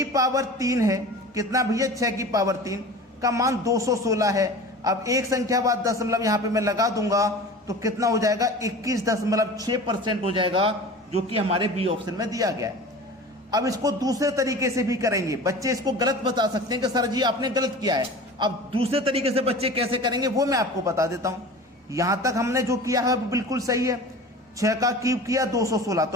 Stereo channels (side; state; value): both; normal; correlation 0.37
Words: पावर 3 है, कितना भैया? 6 की पावर 3 का मान 216 है। अब एक संख्या बाद दशमलव यहां पे मैं लगा दूंगा तो कितना हो जाएगा? 21.6% हो जाएगा, जो कि हमारे बी ऑप्शन में दिया गया है। अब इसको दूसरे तरीके से भी करेंगे। बच्चे इसको गलत बता सकते हैं कि सर जी आपने गलत किया है। अब दूसरे तरीके से बच्चे कैसे करेंगे वो मैं आपको बता देता हूं। यहां तक हमने जो किया है बिल्कुल सही है। 6 का क्यूब किया 216,